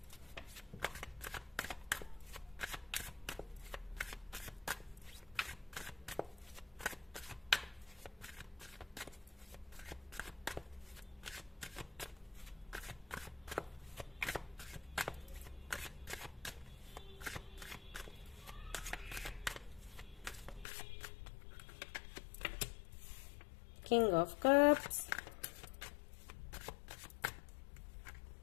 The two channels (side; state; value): right; drops out; at 20.7 s